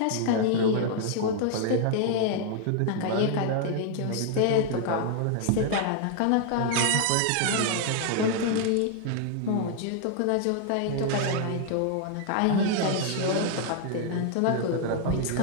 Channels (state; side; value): different; both; correlation 0.00